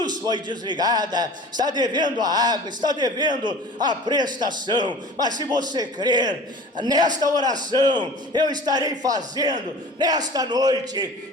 foi desligada, está devendo a água, está devendo a prestação. Mas se você crer nesta oração, eu estarei fazendo nesta noite,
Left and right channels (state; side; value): normal; both; correlation 0.41